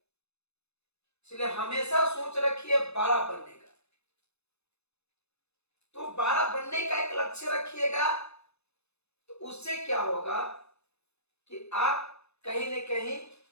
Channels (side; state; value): right; late; 0.80 ms